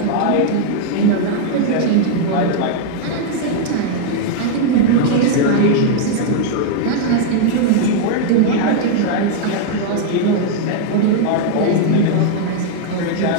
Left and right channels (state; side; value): different; both; correlation 0.00